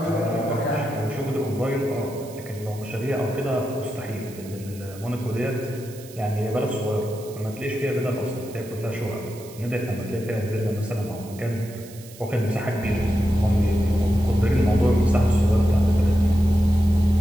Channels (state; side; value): noise; right; hiss, 20 dB below the sound